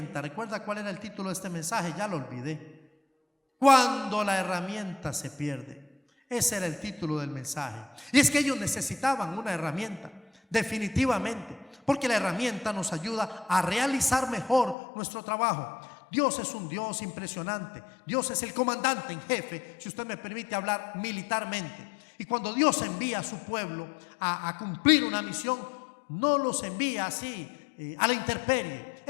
¿Recuerda cuál era el título de este mensaje? Ya lo olvidé. Cuando la herramienta se pierde. Ese era el título del mensaje. Y es que ellos necesitaban una herramienta, definitivamente, porque la herramienta nos ayuda a realizar mejor nuestro trabajo. Dios es un Dios impresionante. Dios es el comandante en jefe, si usted me permite hablar militarmente. Y cuando Dios envía a su pueblo a cumplir una misión, no los envía así a la intemperie.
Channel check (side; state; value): right; drops out; at 14.8 s